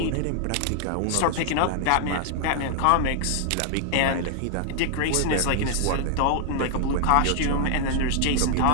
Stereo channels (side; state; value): both; different; correlation 0.00